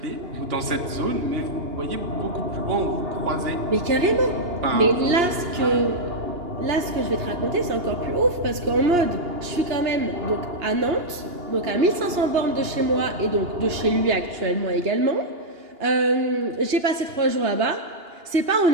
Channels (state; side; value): late; left; 2.8 ms